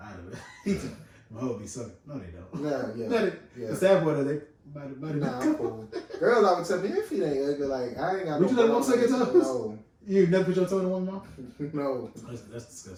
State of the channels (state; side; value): identical; both; correlation 1.00